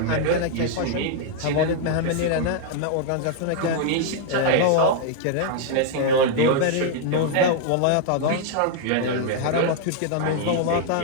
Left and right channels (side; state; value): both; different; correlation -0.01